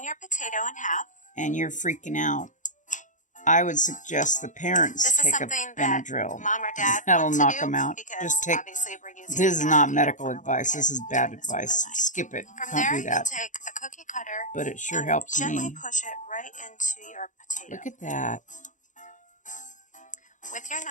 your potato in half, and you're freaking out, I would suggest the parents take a Benadryl. Mom or dad That'll knock them out. Just take. This is not medical advice. This is bad advice. Skip it. Don't do that. Take a cookie cutter, but it sure helps gently me. Push it right into your potato. Look at that. With your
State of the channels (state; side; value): late; right; 0.36 ms